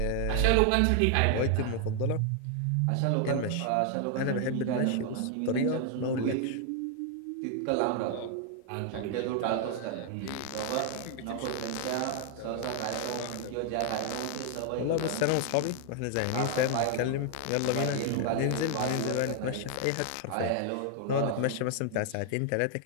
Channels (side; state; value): both; different; correlation 0.00